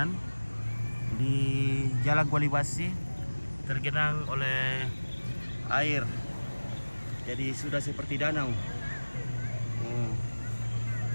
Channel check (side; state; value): both; inverted; correlation -1.00